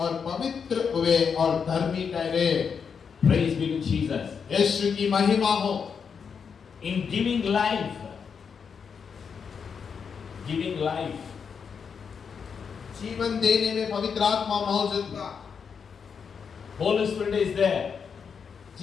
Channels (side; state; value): right; quieter; 6.4 dB